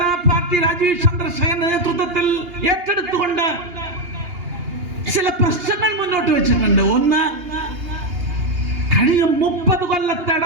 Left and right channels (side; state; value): left; late; 2.8 ms